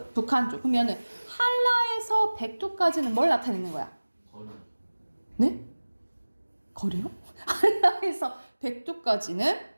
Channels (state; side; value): inverted; both; correlation -1.00